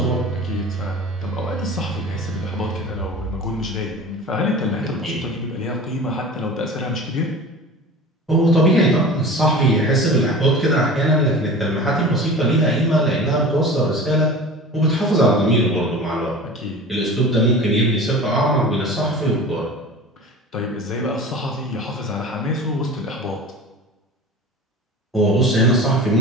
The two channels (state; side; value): normal; both; correlation 0.37